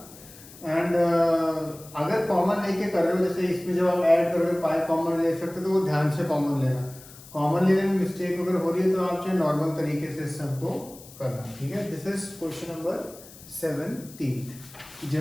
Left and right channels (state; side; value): noise; left; hiss, 19 dB below the sound